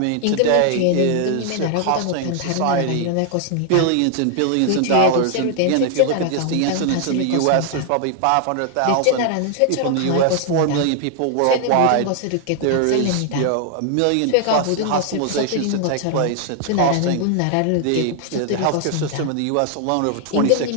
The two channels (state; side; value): different; both; correlation 0.00